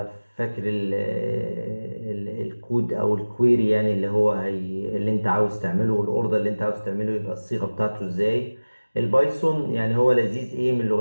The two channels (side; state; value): both; inverted; correlation -1.00